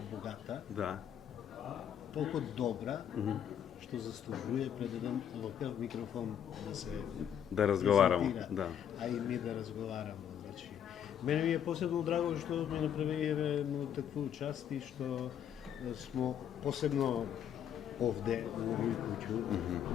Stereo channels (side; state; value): right; quieter; 9.3 dB